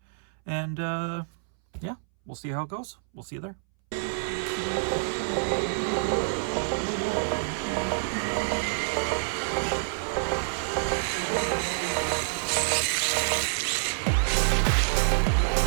and yeah, we'll see how it goes. We'll see you there.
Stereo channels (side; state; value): left; silent; 60 dB below the other